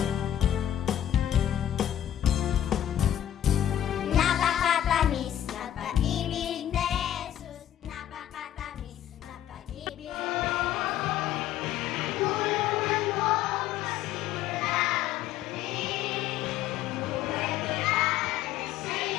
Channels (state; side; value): quieter; right; 11.4 dB